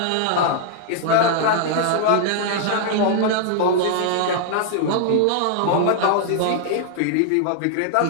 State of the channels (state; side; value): different; both; correlation -0.01